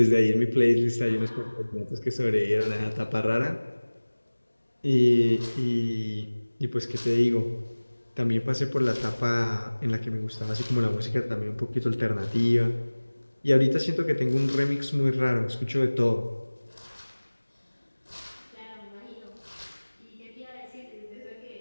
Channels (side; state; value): both; inverted; correlation -1.00